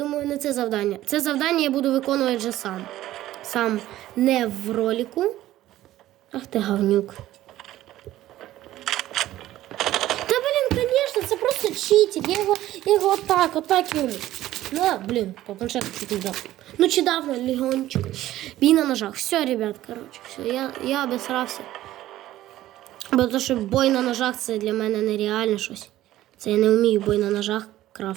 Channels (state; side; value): quieter; left; 14.5 dB